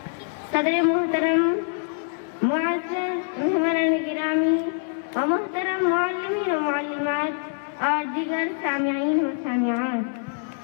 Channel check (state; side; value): silent; right; 62 dB below the other